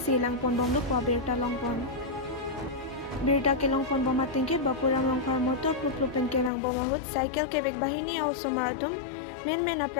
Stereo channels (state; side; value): drops out; right; at 6.5 s